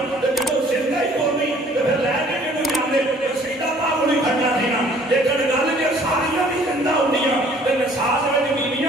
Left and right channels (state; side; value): normal; both; correlation 0.56